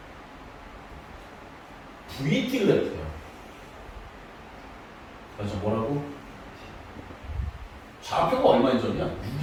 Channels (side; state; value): both; identical; correlation 1.00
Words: VT 그래프야. 그래서 뭐라고? 좌표가 얼마인 점이야?